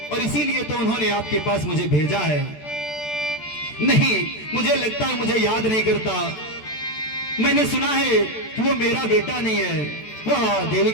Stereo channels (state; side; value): late; right; 14 ms